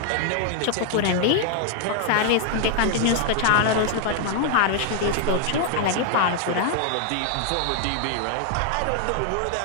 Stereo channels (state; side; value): different; both; correlation 0.00